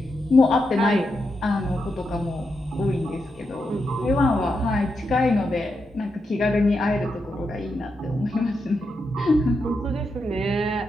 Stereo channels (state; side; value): normal; both; correlation 0.85